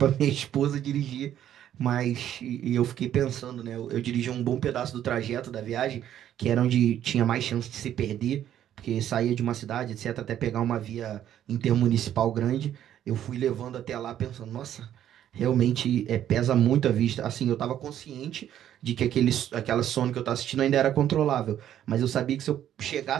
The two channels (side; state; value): left; quieter; 11.0 dB